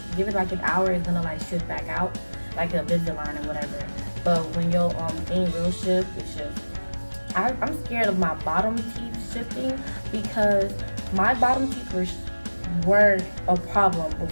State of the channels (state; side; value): inverted; both; correlation -1.00